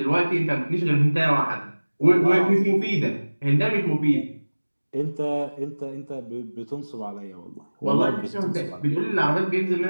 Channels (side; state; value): both; inverted; correlation -1.00